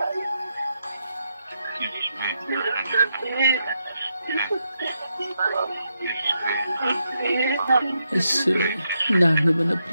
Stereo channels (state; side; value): inverted; both; correlation -0.82